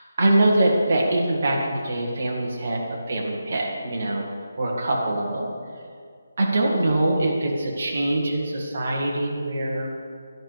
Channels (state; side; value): inverted; both; correlation -0.89